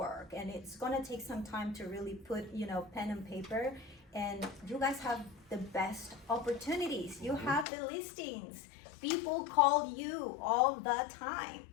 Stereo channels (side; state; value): right; drops out; at 7.7 s